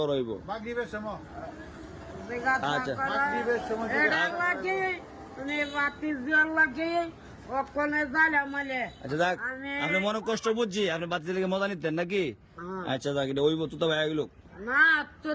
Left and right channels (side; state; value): both; identical; correlation 1.00